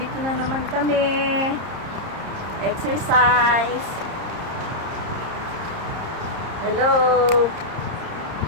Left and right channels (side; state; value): left; late; 30 ms